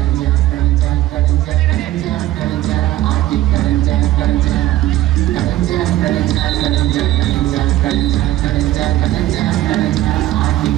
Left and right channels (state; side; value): quieter; left; 14.8 dB